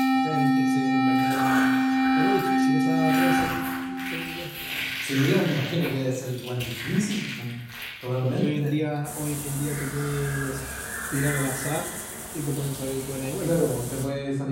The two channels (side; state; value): both; identical; correlation 1.00